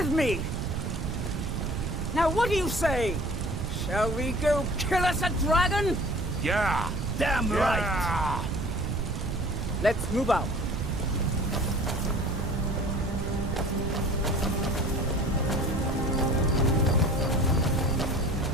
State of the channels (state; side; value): noise; right; rumble, 3 dB below the sound